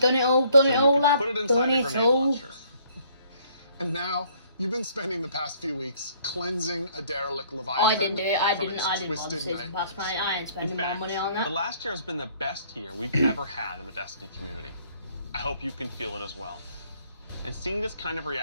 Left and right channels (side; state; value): both; inverted; correlation -0.62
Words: it all, lad. Put it inside Done a it grenade all. launcher. And now, you've been spending the past few weeks cleansing a derelict Leviathan. I didn't do it. I from didn't its bother twisted season pass, nightmares. mate. I ain't spending In more fact, money on the that. last year has been the best year we've ever had in the Destiny community. I hope you can feel it as well. And seeing this kind of